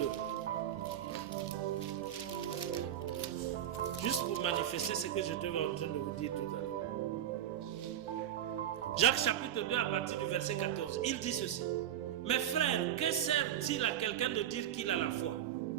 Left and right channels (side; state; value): left; quieter; 10.8 dB